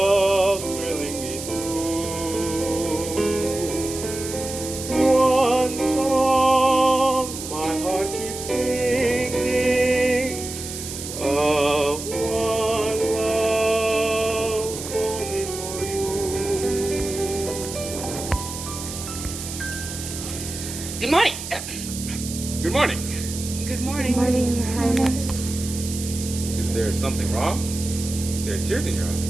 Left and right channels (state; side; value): noise; right; hiss, 8 dB below the sound